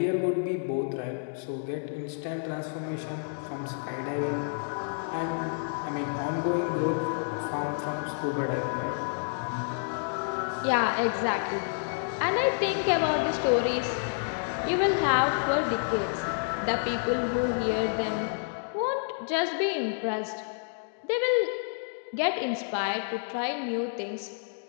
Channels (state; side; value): silent; right; digital silence